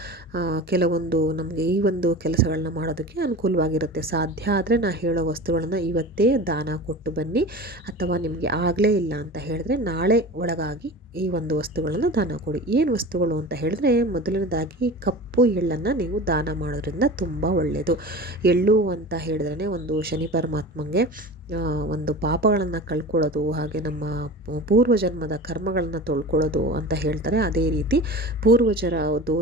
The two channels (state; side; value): normal; both; correlation 0.34